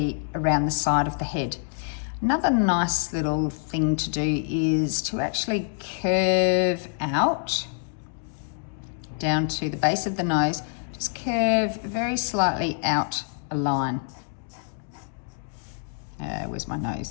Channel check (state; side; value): silent; right; digital silence